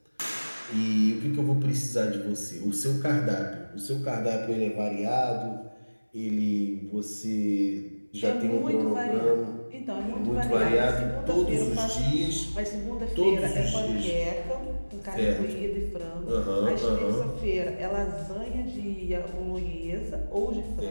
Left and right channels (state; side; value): inverted; both; correlation -1.00